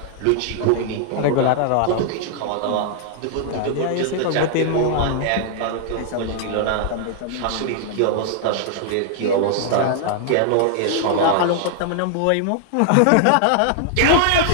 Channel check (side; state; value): both; different; correlation 0.00